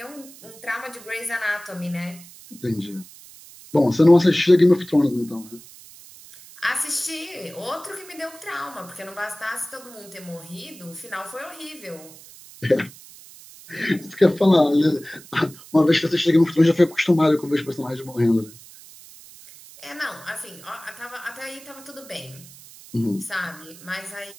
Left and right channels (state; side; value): noise; right; hiss, 20 dB below the sound